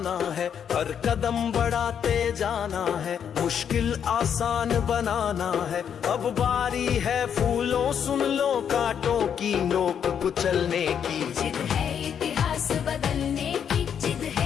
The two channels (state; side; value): quieter; right; 8.2 dB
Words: है। हर कदम बढ़ाते जाना है, मुश्किल आसान बनाना है। अब बारी है फूलों सुन लो कांटों की, नोक कुचलने की। जिद है इतिहास बदलने की, जिद